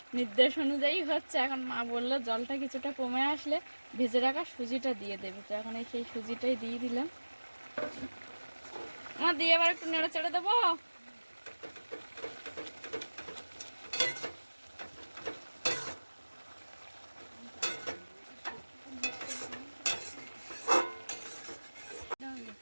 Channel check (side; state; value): both; inverted; correlation -1.00